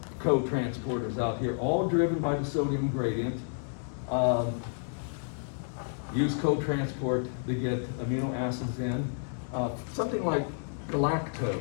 co-transporters out here, all driven by the sodium gradient, use co-transport to get amino acids in. Something like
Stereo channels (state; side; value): silent; right; digital silence